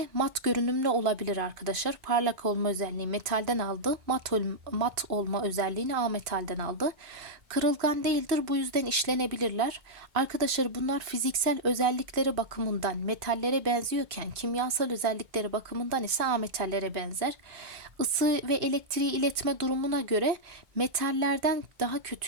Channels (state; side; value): late; left; 2.6 ms